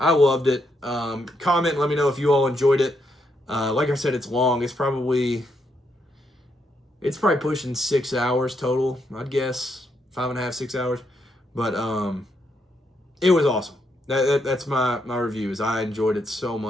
loved it. Comment, let me know if you all enjoyed it. Like I said, it's long. It's probably pushing 6 hours total, I'd guess. 5.5, 6 hours. But it was awesome. That's my review. Is I enjoyed it so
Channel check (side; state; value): both; normal; correlation 0.78